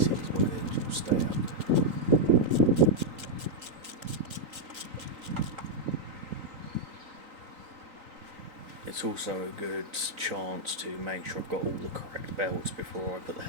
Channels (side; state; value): left; late; 3.8 ms